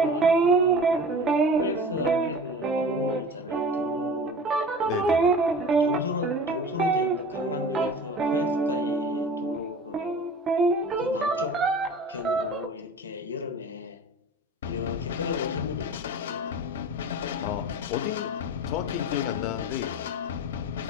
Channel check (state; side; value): normal; both; correlation 0.38